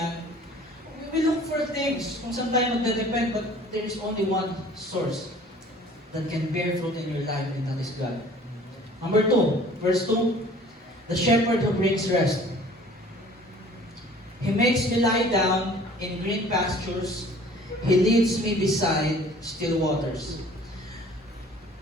We look for things kung saan tayo magdedepend, but there is only one source that can bear fruit in your life, and that is God. Number 2, verse 2, the shepherd who brings rest. He makes me lie down in green pastures. He leads me beside still waters.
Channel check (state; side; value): normal; both; correlation 0.50